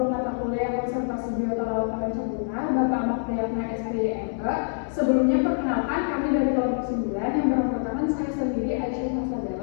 mata kuliah konservasi biota laut Tanjung Bapak Ahmad Priyatna SPMK. Sebelumnya perkenalkan kami dari kelompok 9 yang beranggotakan saya sendiri Aisyah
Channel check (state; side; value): silent; right; digital silence